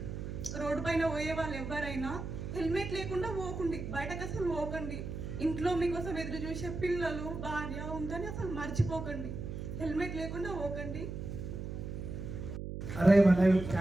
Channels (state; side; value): noise; right; hum, 6 dB below the sound